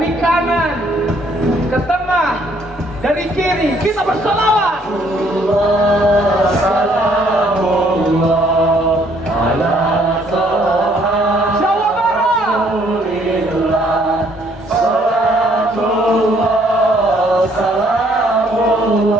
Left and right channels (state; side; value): normal; both; correlation 0.65